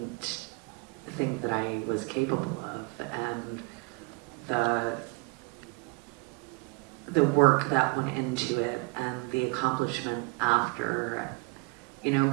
think that I was capable of. And the work that went into it and the accomplishment after, you know,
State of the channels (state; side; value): quieter; left; 28.3 dB